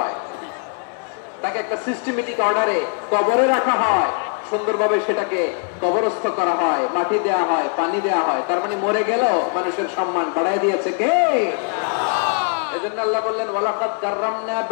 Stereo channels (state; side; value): quieter; right; 39.7 dB